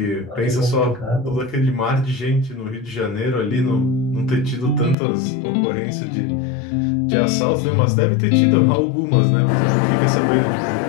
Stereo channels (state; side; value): drops out; right; at 5.0 s